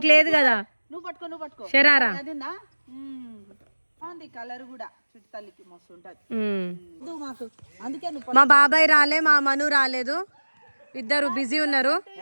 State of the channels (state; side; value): inverted; both; correlation -1.00